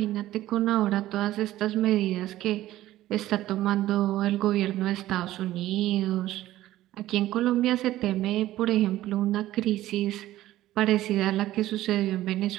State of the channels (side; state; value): left; quieter; 14.9 dB